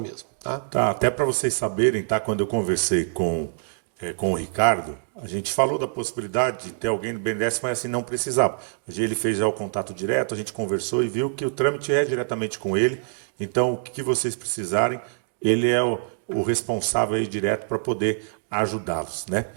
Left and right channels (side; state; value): left; silent; digital silence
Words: Tá, até para vocês saberem, tá? Quando eu conversei com o Ricardo, a gente falou da possibilidade de ter alguém do BNDES, mas assim não precisava. Ele fez já o contato direto, a gente conversou e viu que o trâmite é diretamente com ele. Então, o que vocês precisarem, ele é o responsável aí direto para poder ajudá-los, né?